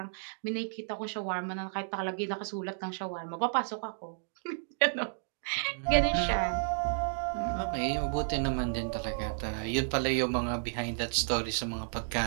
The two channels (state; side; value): silent; left; digital silence